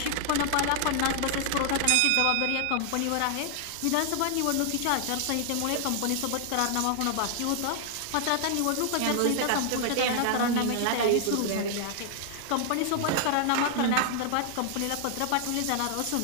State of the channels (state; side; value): different; both; correlation 0.00